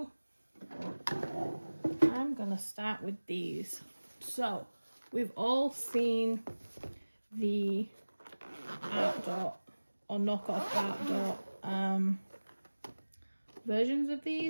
I'm gonna start with these. So we've all seen the OutDot or knockoff OutDot versions of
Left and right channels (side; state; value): both; inverted; correlation -1.00